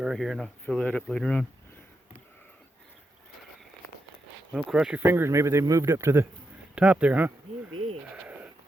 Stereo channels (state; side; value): normal; both; correlation 0.85